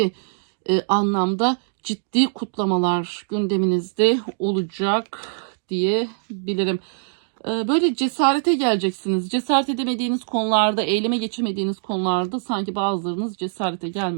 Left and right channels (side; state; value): left; silent; digital silence